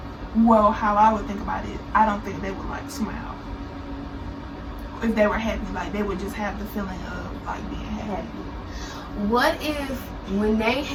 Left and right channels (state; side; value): identical; both; correlation 1.00